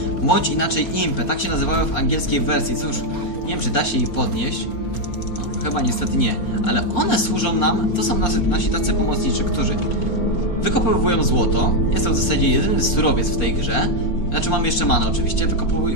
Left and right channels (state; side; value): late; right; 4.4 ms